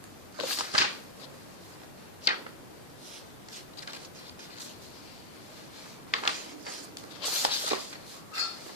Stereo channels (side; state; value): both; normal; correlation -0.04